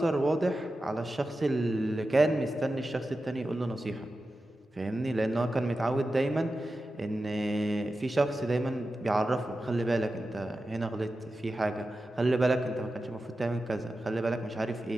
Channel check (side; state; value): both; normal; correlation 0.92